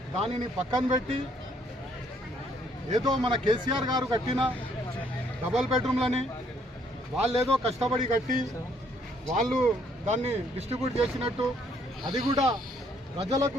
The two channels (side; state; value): both; normal; correlation 0.67